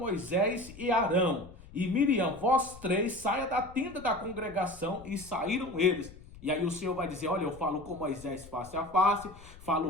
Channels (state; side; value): noise; left; rumble, 19 dB below the sound